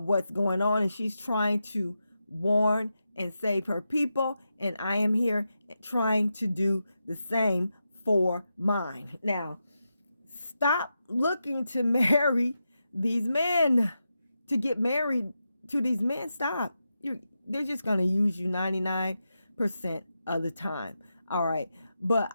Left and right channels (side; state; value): both; inverted; correlation -0.88